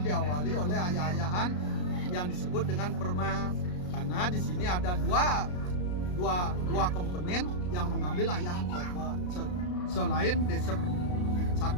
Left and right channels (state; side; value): late; right; 33 ms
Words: diawali oleh ayah-ayahan yang disebut dengan permas, karena di sini ada dua komponen yang mengambil ayahan pokok selain desa.